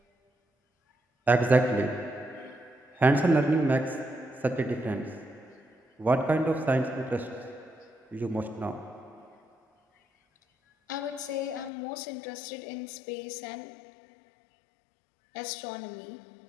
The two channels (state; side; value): drops out; right; at 11.7 s